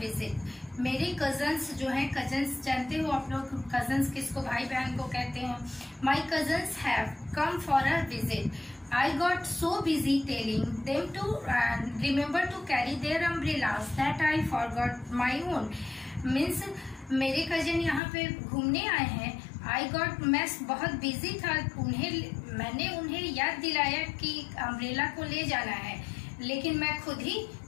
मेरे कजन्स जो हैं, कजन्स जानते हो आप लोग कजन्स किसको, भाई बहन को कहते हैं। My cousins have come for a visit, I got so busy telling them to remember to carry their umbrellas that I forgot my own. Means मेरे कजन यहाँ पे घूमने आए हैं, आई गॉट, मैं बहुत बिजी था, मैंने उन्हें याद दिलाया कि अम्ब्रेला को ले जाना है, लेकिन मैं खुद ही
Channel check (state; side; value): drops out; right; at 18.0 s